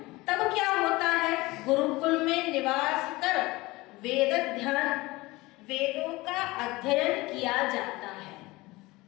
तब क्या होता है? गुरुकुल में निवास कर वेद ध्यान, वेदों का अध्ययन किया जाता है।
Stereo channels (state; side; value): quieter; right; 21.1 dB